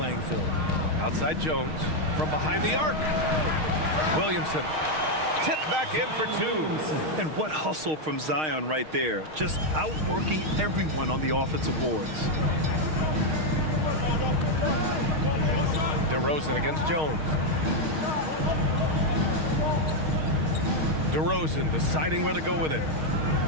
field. Outside Jones from behind the arc. Williamson tipped back in for 2. And what hustle from Zion right there. Just outworking everyone on the offensive boards. DeRozan against Jones. DeRozan deciding where to go with it.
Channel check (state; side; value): late; left; 6.4 ms